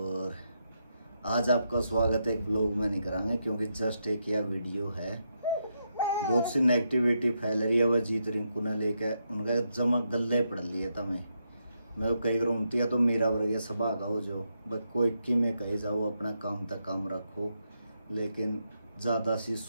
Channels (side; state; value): both; inverted; correlation -0.82